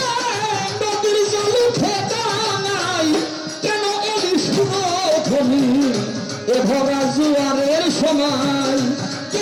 নদীর জল উঠে ডাঙায়। কেন এলি সুরধ্বনি এ ভরা জোয়ারের সময়?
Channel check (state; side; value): identical; both; correlation 1.00